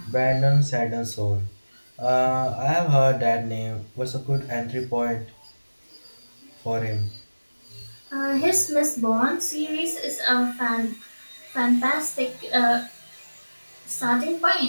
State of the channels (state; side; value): inverted; both; correlation -1.00